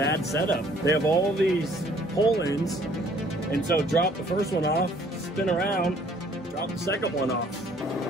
setup. They have all these pull-ins, and so drop the first one off, spin around, drop the second one off.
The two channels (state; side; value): noise; right; hum, 28 dB below the sound